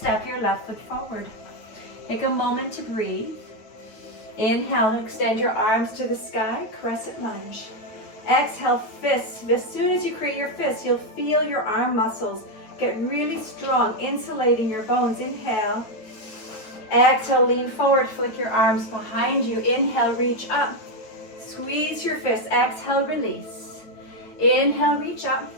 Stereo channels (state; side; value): late; right; 9.2 ms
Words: your left foot forward. Take a moment to breathe. Inhale, extend your arms to the sky, crescent lunge. Exhale, fists. As soon as you create your fists, you'll feel your arm muscles get really strong, insulating your bones. Inhale. Exhale, lean forward, flick your arms behind you. Inhale, reach up. Squeeze your fists. Exhale, release. Inhale, reach up.